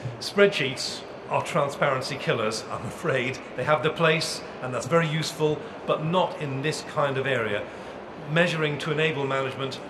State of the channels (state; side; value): identical; both; correlation 1.00